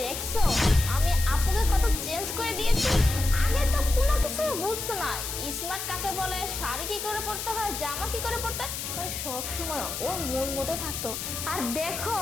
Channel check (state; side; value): noise; left; hiss, 5 dB below the sound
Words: দেখছো আমি আপুকে কত চেঞ্জ করে দিয়েছি। আগে তো কোনো কিছু বুঝতো না, স্মার্ট কাকে বলে, শাড়ি কি করে পরতে হয়, জামা কি করে পরতে হয়, মানে সব সময় ওর মন মতো থাকতো। আর দেখো